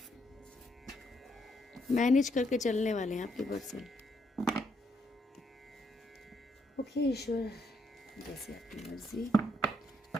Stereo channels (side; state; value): both; normal; correlation 0.75